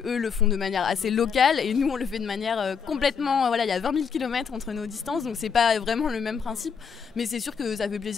le font de manière assez locale et nous, on le fait de manière complètement. Il y a 20 000 km entre nos distances, donc c'est pas vraiment le même principe. Mais c'est sûr que ça fait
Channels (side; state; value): right; quieter; 6.3 dB